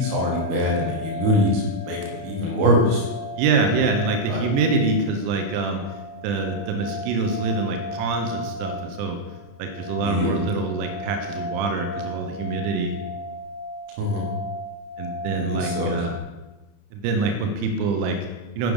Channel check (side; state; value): left; late; 30 ms